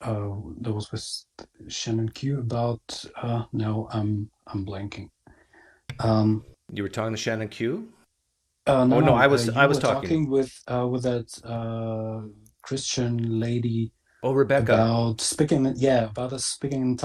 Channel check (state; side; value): identical; both; correlation 1.00